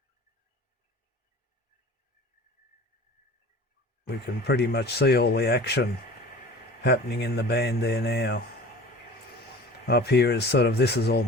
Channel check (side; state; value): both; normal; correlation 0.41